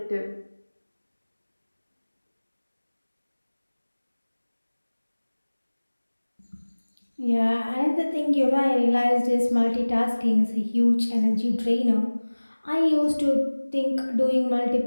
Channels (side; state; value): both; inverted; correlation -1.00